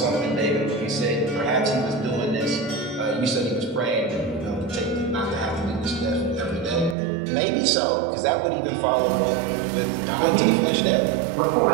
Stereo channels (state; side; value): drops out; left; at 7.0 s